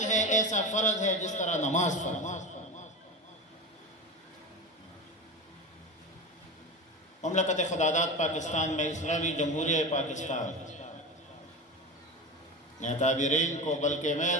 ہے، ایسا فرض ہے جس طرح نماز فرض۔ مملکت خدادات پاکستان میں اسلامی جمہوریہ پاکستان نے اکابرین کو، بلکہ میں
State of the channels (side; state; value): both; normal; correlation 0.25